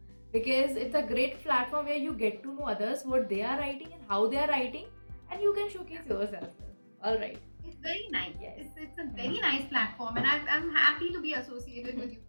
because it's a great platform where you get to know others, what they are writing and how they are writing, and you can showcase yourself. All right. It's very nice. Yes. It's a very nice platform, and I'm happy to be associated with you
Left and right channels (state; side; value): inverted; both; correlation -1.00